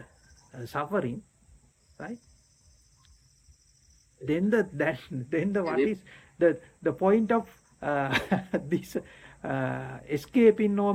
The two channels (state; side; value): identical; both; correlation 1.00